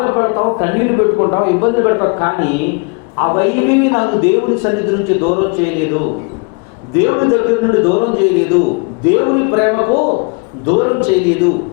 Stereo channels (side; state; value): right; quieter; 33.2 dB